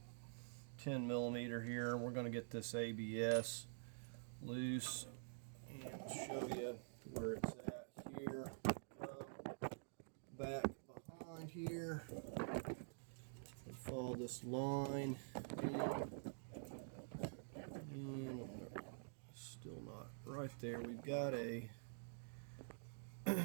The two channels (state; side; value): silent; left; digital silence